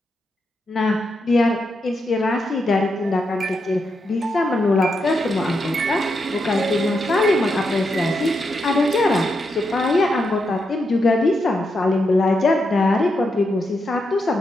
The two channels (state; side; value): normal; both; correlation 0.83